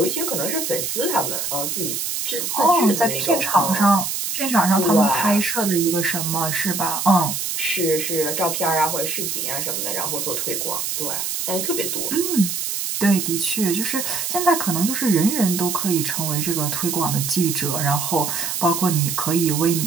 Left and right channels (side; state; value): right; noise; hiss, 2 dB below the sound